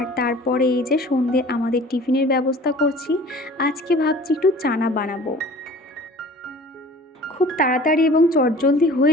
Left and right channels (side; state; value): both; normal; correlation 0.46